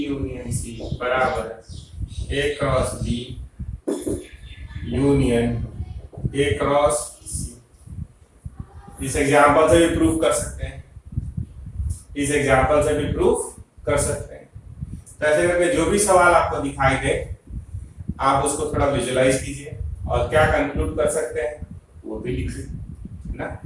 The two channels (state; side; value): identical; both; correlation 1.00